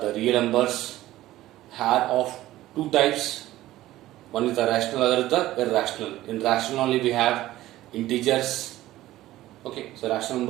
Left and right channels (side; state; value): left; quieter; 15.5 dB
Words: real numbers are of two types. One is the rational, other is the irrational. In rational only we have integers. Okay, so rational